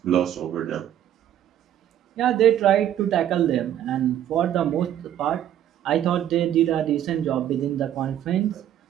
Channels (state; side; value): quieter; left; 11.0 dB